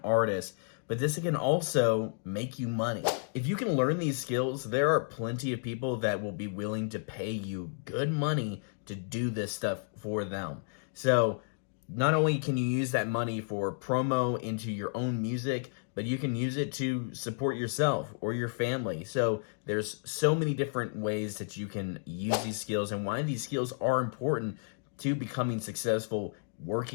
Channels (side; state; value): right; silent; digital silence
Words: artist, but this can also make you money. If you can learn these skills, there are plenty of people that will be willing to pay you good money to do this stuff for them. So not only can you use that money for promo into your own music, but you can use it to support yourself or your family. So there's so many different ways that you can use these skills and why these skills are important to becoming successful